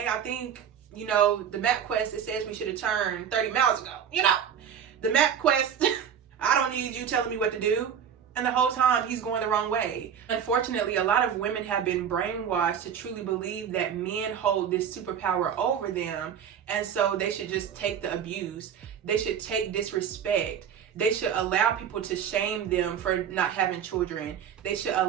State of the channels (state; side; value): quieter; left; 8.3 dB